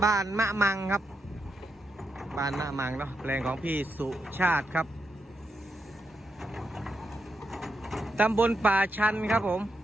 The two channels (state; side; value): normal; both; correlation 0.83